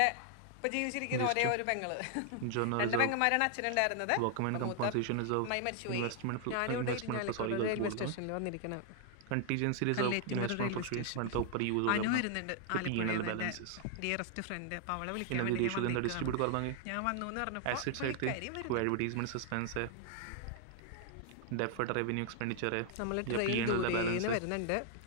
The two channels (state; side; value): different; both; correlation 0.00